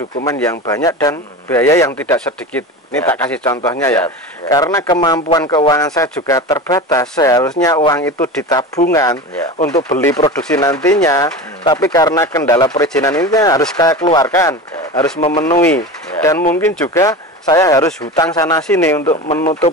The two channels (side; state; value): both; normal; correlation 0.29